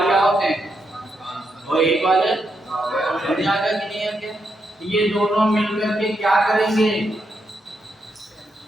क्या होते हैं? और 1 वाले समझ आ गया कि नहीं आ गया? ये दोनों मिलकर के क्या करेंगे?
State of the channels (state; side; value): normal; both; correlation 0.82